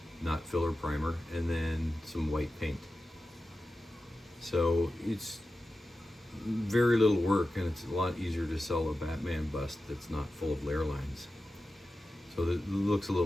not filler primer, and then some white paint. So it's very little work, and it's a lot easier to sell a Batman bust that's not full of layer lines. So it looks a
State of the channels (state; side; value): normal; both; correlation 0.93